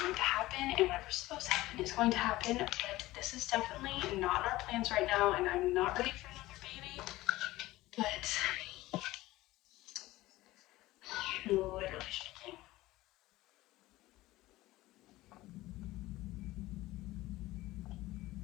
to happen, and whatever's supposed to happen is going to happen, but this is definitely not in our plans right now, and I'm not ready for another baby, but literally shaking.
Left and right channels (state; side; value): quieter; right; 17.8 dB